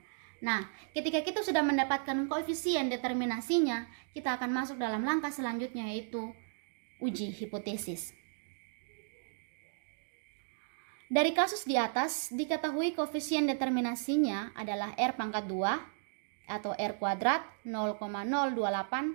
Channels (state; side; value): silent; left; digital silence